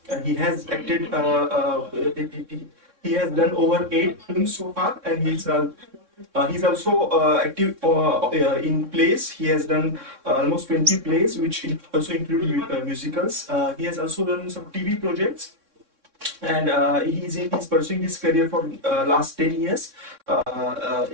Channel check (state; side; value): late; left; 3.6 ms